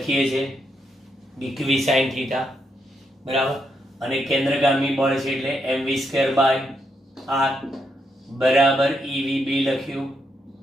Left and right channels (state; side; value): normal; both; correlation 0.80